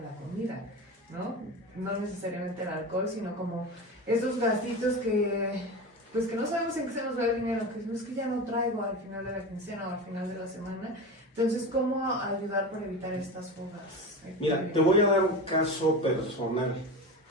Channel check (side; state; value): both; normal; correlation 0.27